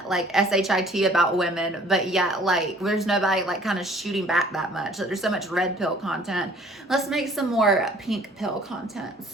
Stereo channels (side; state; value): both; normal; correlation 0.54